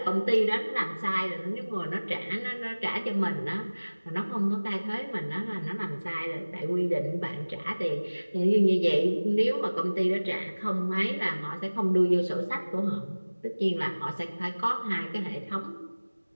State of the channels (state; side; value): inverted; both; correlation -1.00